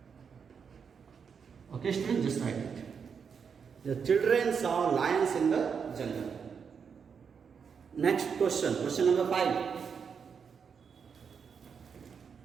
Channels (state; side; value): quieter; left; 6.4 dB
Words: Okay, students, just write it. The children saw lions in the jungle. Next question, question number 5.